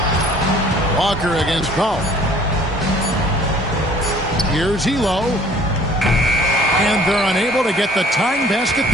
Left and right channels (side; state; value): both; normal; correlation 0.54